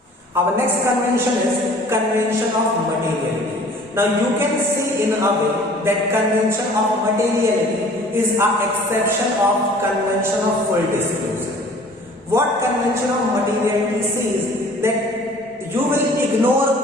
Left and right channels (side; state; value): both; normal; correlation 0.50